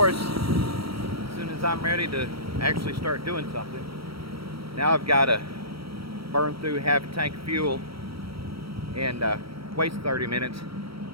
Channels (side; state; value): left; late; 0.75 ms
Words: as soon as I'm ready to actually start doing something, now I've got to burn through half a tank of fuel and waste 30 minutes